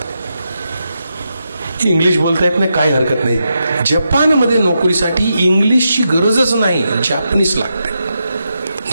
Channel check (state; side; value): inverted; both; correlation -0.85